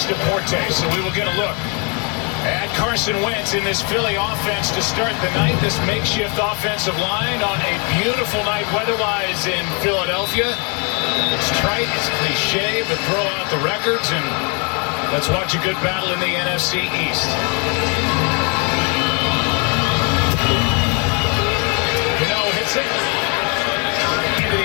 Deportes. So we will get a look at Carson Wentz in this Philly offense to start the night. This makeshift offensive line on a beautiful night weather-wise in Philadelphia. It's trite, it's cliche, but throw out the records and let's watch a good battle in the NFC East. Hits it into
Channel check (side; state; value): right; quieter; 34.7 dB